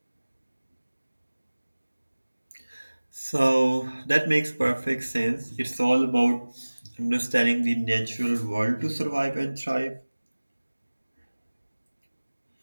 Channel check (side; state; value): both; inverted; correlation -1.00